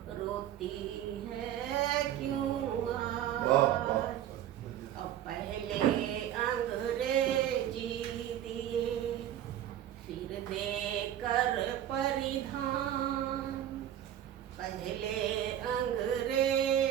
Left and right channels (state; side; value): quieter; left; 11.3 dB